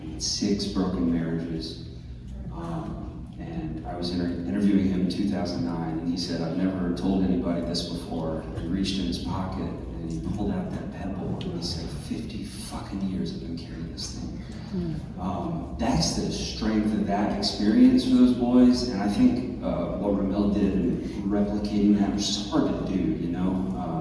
He had 6 broken marriages. And I was interviewing him in 2009, and he said, I've never told anybody this before. He reached in his pocket, and he pulled out that pebble, and he said, 50 fucking years I've been carrying this thing. That's the strength of that experience for those boys, and I think what Ramel did in replicating that, which is hard to do,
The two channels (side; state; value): both; identical; correlation 1.00